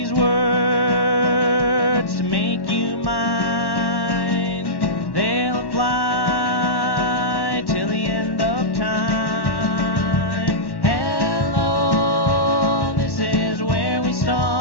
words to make you mine. They'll apply till the end of time. Hello, this is where we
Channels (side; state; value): right; late; 1.1 ms